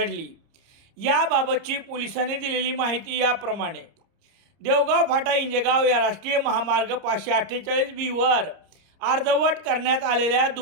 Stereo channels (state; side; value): late; left; 30 ms